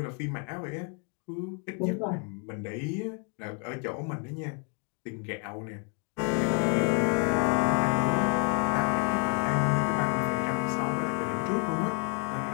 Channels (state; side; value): quieter; right; 39.6 dB